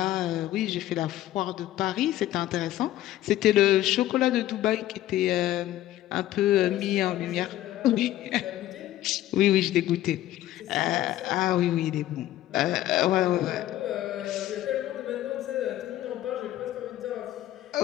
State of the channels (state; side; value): quieter; right; 14.0 dB